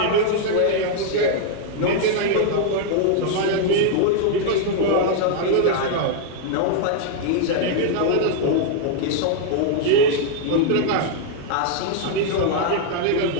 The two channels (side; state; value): both; different; correlation 0.00